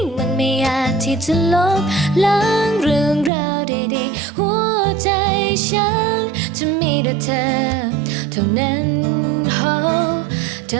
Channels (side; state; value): left; drops out; at 3.3 s